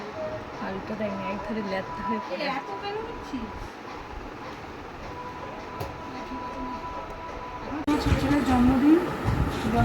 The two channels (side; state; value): both; identical; correlation 1.00